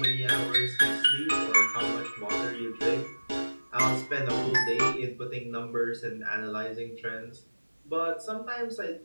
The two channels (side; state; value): both; inverted; correlation -1.00